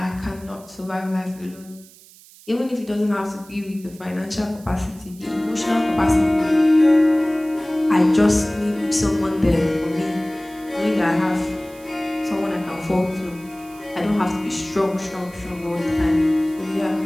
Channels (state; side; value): noise; right; hiss, 23 dB below the sound